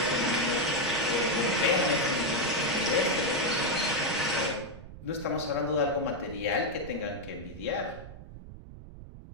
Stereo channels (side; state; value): right; noise; rumble, 15 dB below the sound